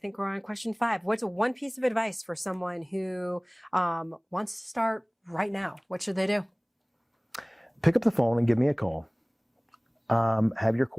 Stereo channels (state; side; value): identical; both; correlation 1.00